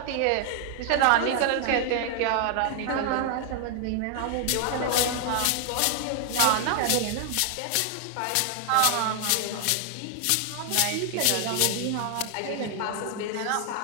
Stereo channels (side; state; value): both; different; correlation 0.00